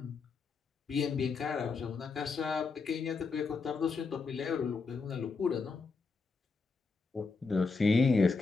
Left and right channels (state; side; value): quieter; right; 4.5 dB